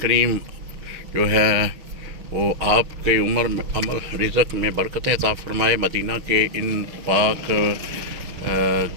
जो है वो आपके उम्र में अमल रिज़्क़ में बरकतें अता फरमाए। मदीना के इन पाक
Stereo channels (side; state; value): left; late; 6.5 ms